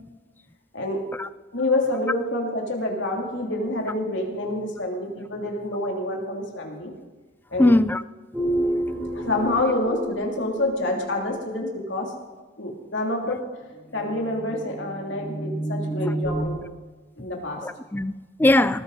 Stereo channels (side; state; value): both; normal; correlation 0.45